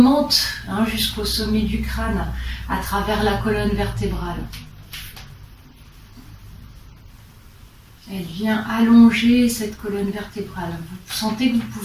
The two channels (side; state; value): both; identical; correlation 1.00